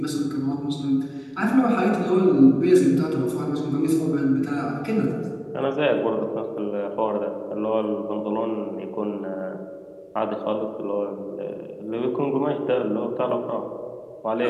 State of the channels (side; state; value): both; identical; correlation 1.00